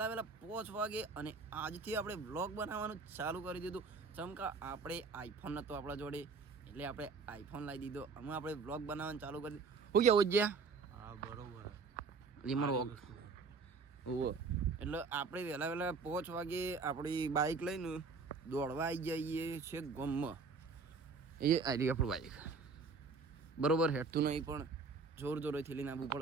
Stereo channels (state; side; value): quieter; left; 4.6 dB